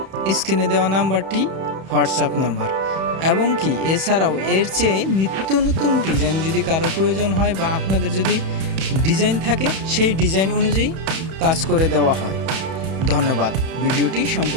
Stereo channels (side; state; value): left; late; 31 ms